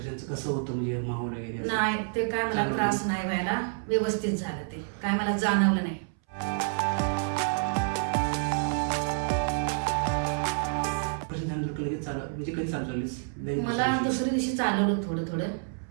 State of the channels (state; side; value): silent; left; 59 dB below the other